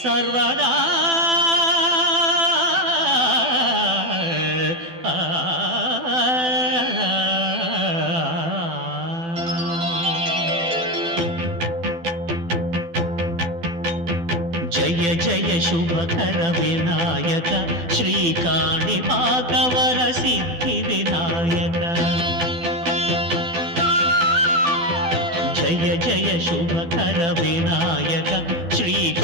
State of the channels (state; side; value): late; left; 12 ms